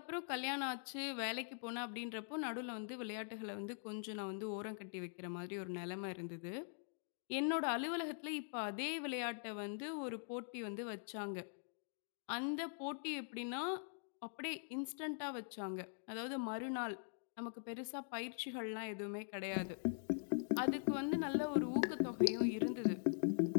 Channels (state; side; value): silent; right; digital silence